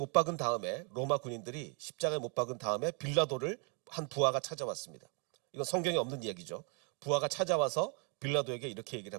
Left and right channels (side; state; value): left; quieter; 36.8 dB